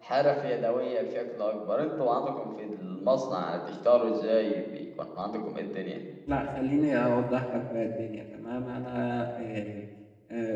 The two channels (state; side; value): identical; both; correlation 1.00